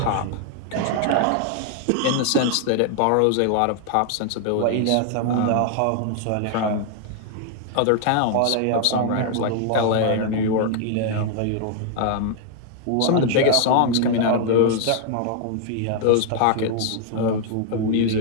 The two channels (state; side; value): different; both; correlation 0.00